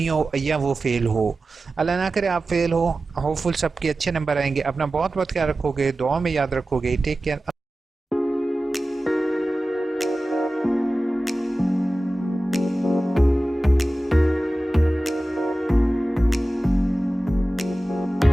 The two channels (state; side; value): normal; both; correlation 0.95